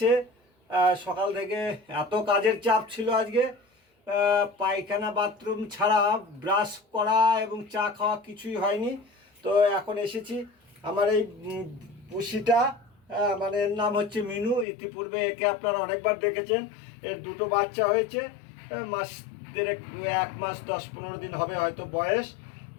সকাল থেকে এত কাজের চাপ ছিল আজকে, পায়খানা বাথরুম ছাড়া ব্রাশ করা এবং চা খাওয়া কিছুই হয়নি। তো এখন এসেছি আমার এই পুষিটা, মানে এর নাম হচ্ছে মিনু। ইতিপূর্বে একে আপনারা অনেকবার দেখেছেন। এর দুটো বাচ্চা হয়েছে, মাস দেড়েক, 1 মাস 10-15 দিন হবে হয়তো বয়স।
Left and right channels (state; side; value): drops out; right; at 14.7 s